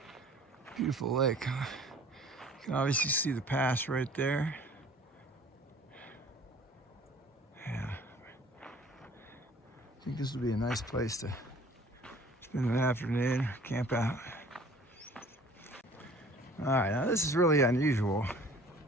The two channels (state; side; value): normal; both; correlation 0.50